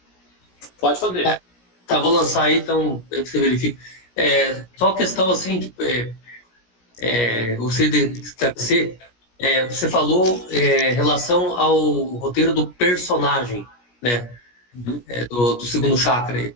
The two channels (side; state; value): right; late; 17 ms